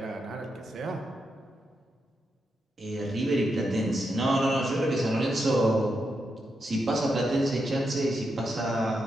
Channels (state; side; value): normal; both; correlation 0.84